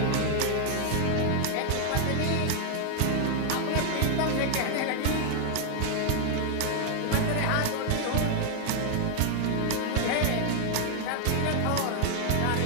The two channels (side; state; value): both; different; correlation 0.00